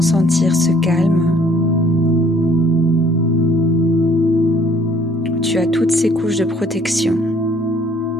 sentir ce calme. Tu as toutes ces couches de protection.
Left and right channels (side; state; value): both; normal; correlation 0.59